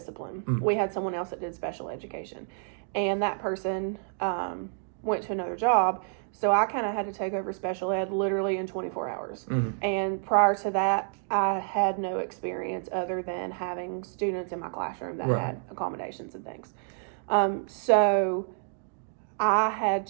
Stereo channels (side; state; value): left; silent; digital silence